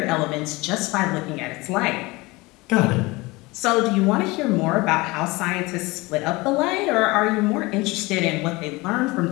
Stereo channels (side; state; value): right; quieter; 22.8 dB